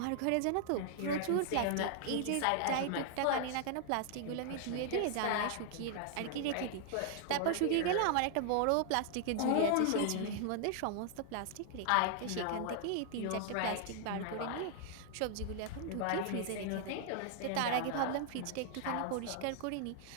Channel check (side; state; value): both; different; correlation -0.01